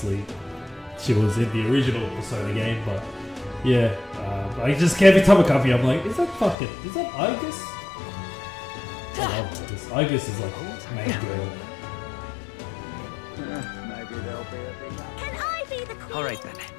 she was in the original Persona game. But yeah, I just every time I come here, I'm like, is that Argus? I love Argus. Argus is like main girl. Maybe there'll be a big Can I be the queen? Alright then.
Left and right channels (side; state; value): right; drops out; at 6.6 s